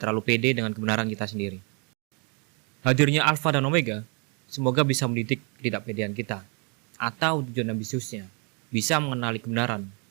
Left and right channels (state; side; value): quieter; left; 35.1 dB